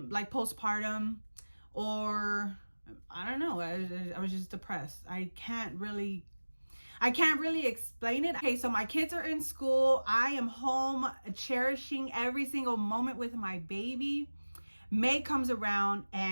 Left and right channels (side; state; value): both; inverted; correlation -1.00